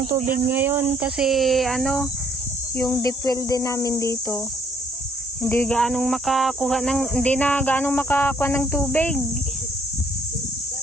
tubig ngayon kasi yung deep well din namin dito. Hindi na gaanong makakuha ng tubig.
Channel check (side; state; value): both; normal; correlation 0.64